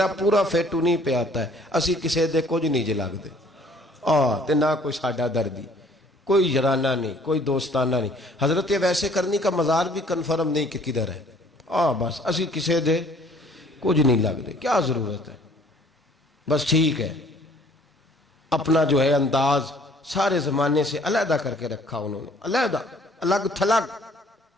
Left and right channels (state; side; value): normal; both; correlation 0.57